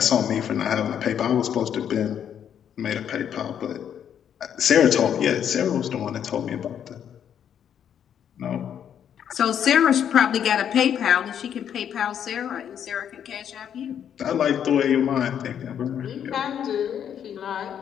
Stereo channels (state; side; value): quieter; right; 9.0 dB